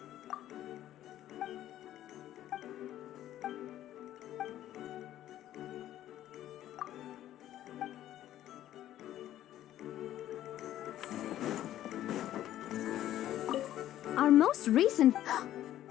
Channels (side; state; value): right; quieter; 12.8 dB